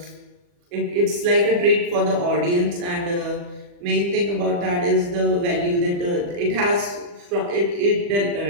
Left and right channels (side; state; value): left; late; 40 ms